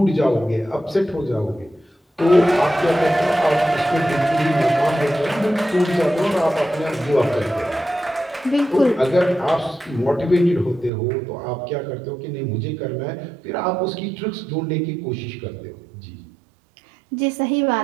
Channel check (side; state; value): left; drops out; at 10.9 s